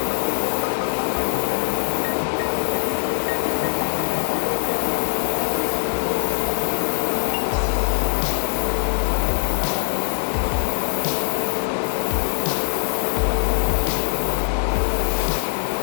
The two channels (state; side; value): silent; right; 64 dB below the other